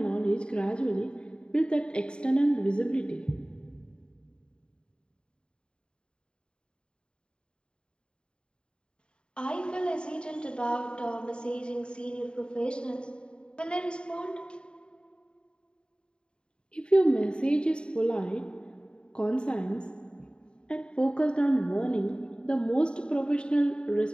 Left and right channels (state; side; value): late; right; 0.051 ms